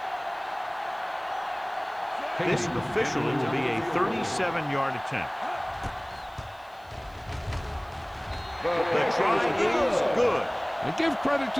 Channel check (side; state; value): right; noise; hiss, 30 dB below the sound